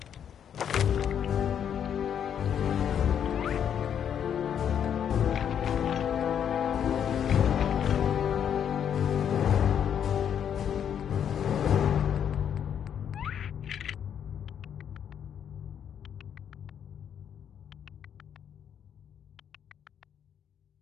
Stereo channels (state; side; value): quieter; right; 8.7 dB